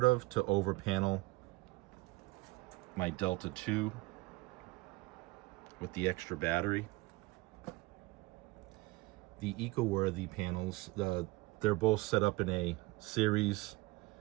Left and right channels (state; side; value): quieter; left; 21.8 dB